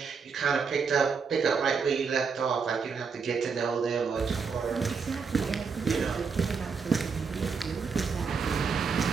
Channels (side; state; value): left; quieter; 5.5 dB